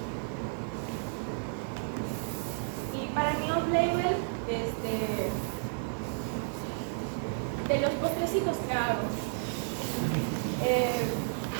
Y para mi off-label, de los postrecitos que hago,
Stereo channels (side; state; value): left; silent; digital silence